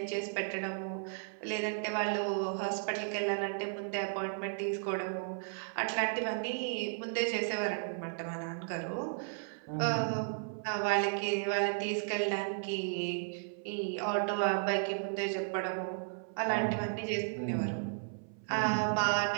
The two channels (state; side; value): silent; left; 55 dB below the other